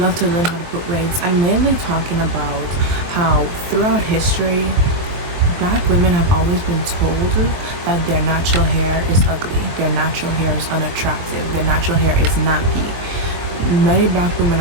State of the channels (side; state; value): left; late; 23 ms